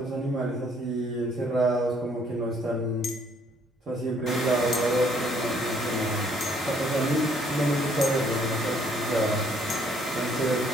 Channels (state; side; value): normal; both; correlation 0.65